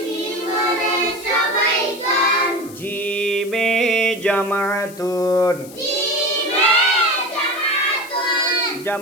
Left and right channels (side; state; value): left; noise; hiss, 19 dB below the sound